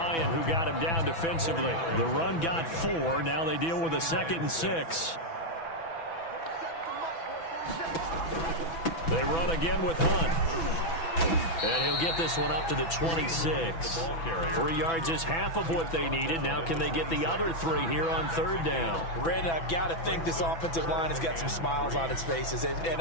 who got him down defensively. The run got 4. Now they deal with a 2nd and 6. They run again with Hunt. And he'll get this one up to the 26. 3 yards is half of what they needed. Now can they get the other 3 here on 3rd down? Brandon, I've got to think this offensive line has got some smiles on its faces.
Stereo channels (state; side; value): late; right; 6.0 ms